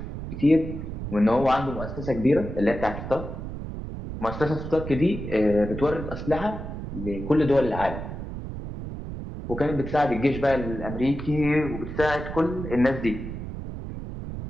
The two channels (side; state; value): right; noise; rumble, 8 dB below the sound